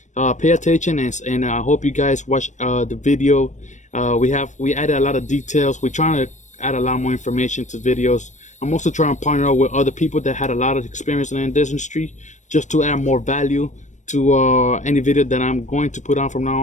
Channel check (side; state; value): right; late; 0.35 ms